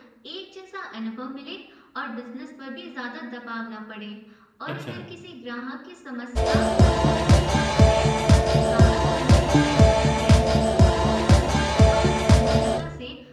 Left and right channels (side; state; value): both; identical; correlation 1.00